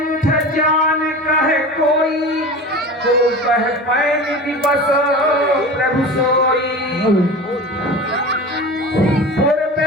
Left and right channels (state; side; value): normal; both; correlation 0.33